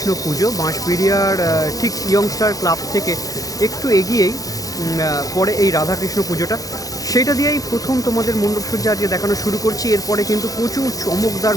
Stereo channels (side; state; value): right; late; 0.17 ms